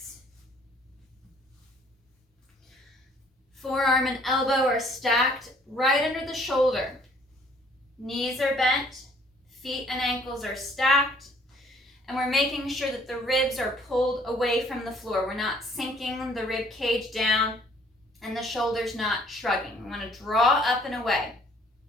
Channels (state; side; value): normal; both; correlation 0.60